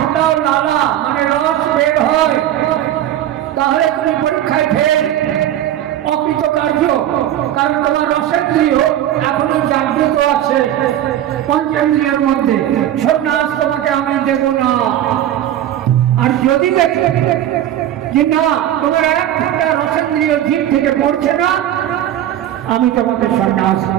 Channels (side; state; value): left; quieter; 11.9 dB